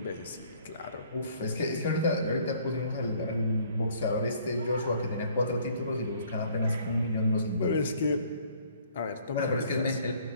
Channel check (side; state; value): both; inverted; correlation -0.59